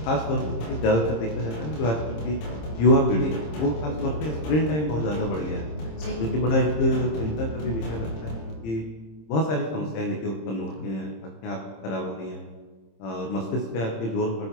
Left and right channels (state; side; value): late; right; 26 ms